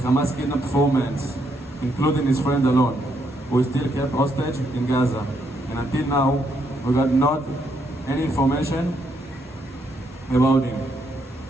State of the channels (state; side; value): normal; both; correlation 0.75